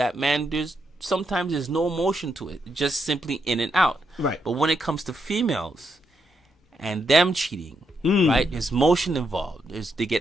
man, sometimes there's no emotion to it. Just simply in and out. Right. But when it comes to females and them cheating, right? There's motion involved. They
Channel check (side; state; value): both; normal; correlation 0.80